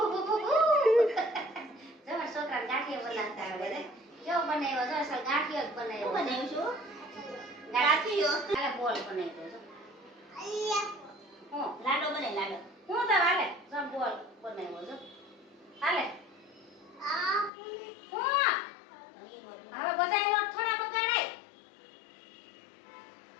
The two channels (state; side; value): drops out; right; at 17.5 s